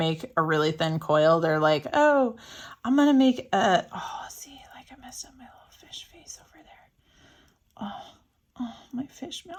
a really thin coil. They're like, oh, I'm going to make see, like I messed up my little fish face over there. Oh, my fish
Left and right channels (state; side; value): identical; both; correlation 1.00